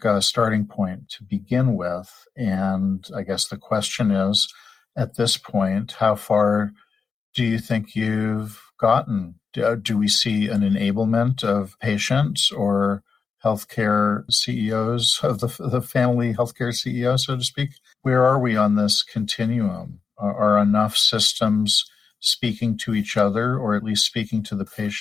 starting point to begin with. And I guess the question is, at this point, how far do you think you've gotten? Do we see an enablement of patients or healthcare CEOs, of the family healthcare CEO, so to speak? Where are we on this continuum? Are enough systems speaking to each other, or at least speaking to the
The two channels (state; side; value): quieter; right; 5.3 dB